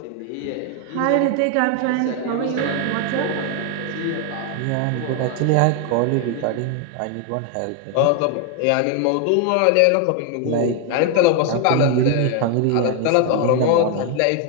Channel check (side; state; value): both; different; correlation 0.01